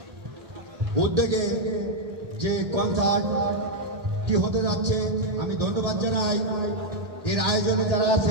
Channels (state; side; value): late; left; 1.8 ms